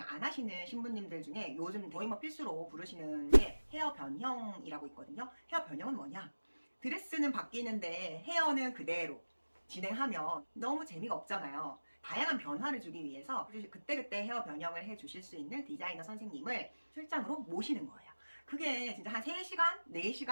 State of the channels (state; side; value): inverted; both; correlation -1.00